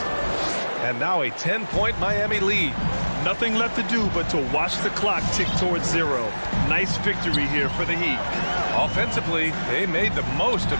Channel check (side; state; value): both; inverted; correlation -1.00